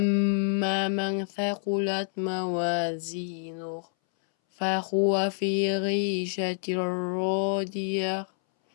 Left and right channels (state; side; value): silent; right; 60 dB below the other